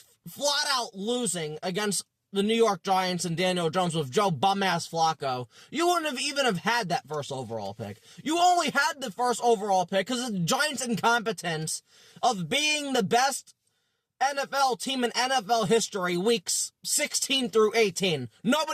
flat out losing against the New York Giants and Daniel Jones with Joe bum-ass Flacco, you wouldn't have even have had that first overall pick. You only had the first overall pick because of the Giants' incompetence of being the best NFL team in NFL history weeks 16 through 18.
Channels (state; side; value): identical; both; correlation 1.00